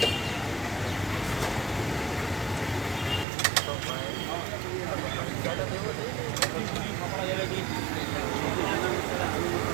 तो ज़्यादा देवो दे कपड़ा जलेगी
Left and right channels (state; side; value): drops out; left; at 3.2 s